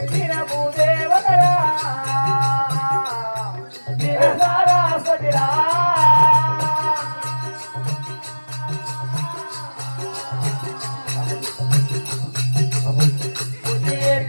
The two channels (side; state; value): both; inverted; correlation -1.00